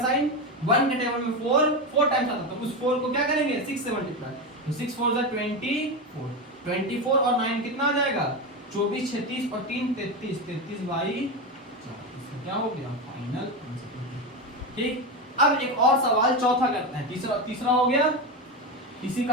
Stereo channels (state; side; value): normal; both; correlation 0.16